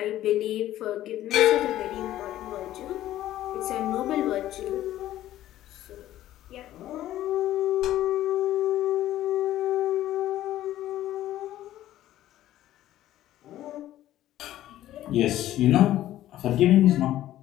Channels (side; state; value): right; quieter; 13.6 dB